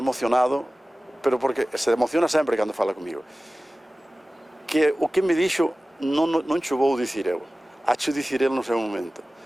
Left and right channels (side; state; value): both; normal; correlation 0.97